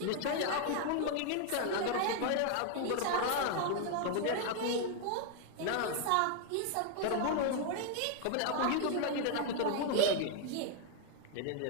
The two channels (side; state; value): both; different; correlation 0.00